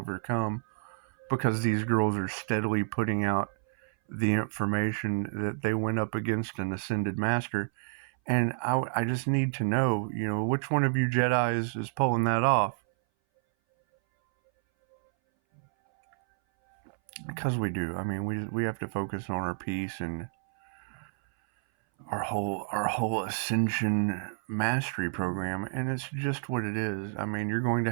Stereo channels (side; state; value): left; silent; 58 dB below the other